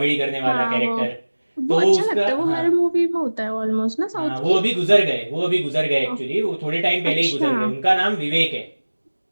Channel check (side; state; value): both; inverted; correlation -1.00